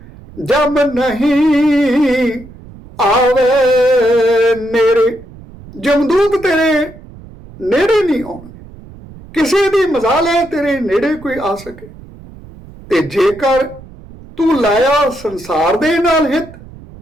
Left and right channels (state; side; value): noise; right; rumble, 19 dB below the sound